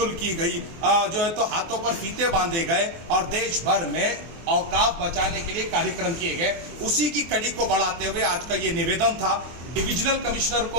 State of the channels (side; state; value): left; late; 24 ms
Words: की गई, जो है तो हाथों पर फीते बांधे गए और देश भर में औकाफ बचाने के लिए कार्यक्रम किए गए। उसी की कड़ी को बढ़ाते हुए आज का ये निवेदन था। डिविजनल कमिश्नर